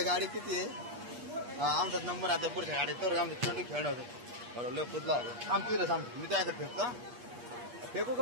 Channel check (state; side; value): late; left; 8.4 ms